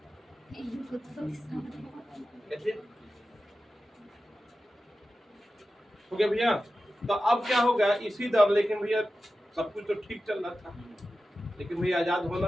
इनको तो कैसे हो गया भैया? तो अब क्या होगा इसी दर, लेकिन भैया सब कुछ तो ठीक चल रहा था, लेकिन भैया आजाद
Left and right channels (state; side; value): normal; both; correlation 0.93